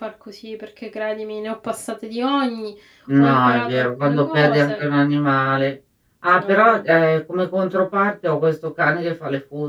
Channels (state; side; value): identical; both; correlation 1.00